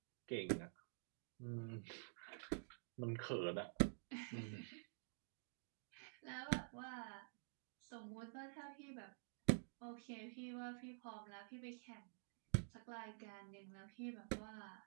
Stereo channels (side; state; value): left; silent; digital silence